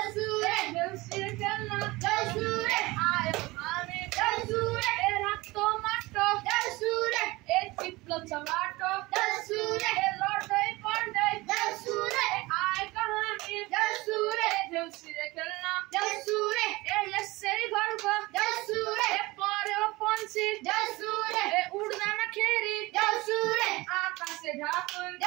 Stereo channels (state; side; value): quieter; left; 21.4 dB